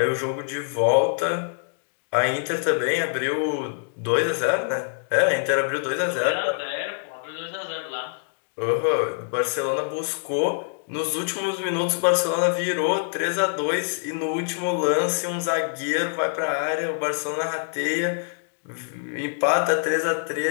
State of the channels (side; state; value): right; silent; digital silence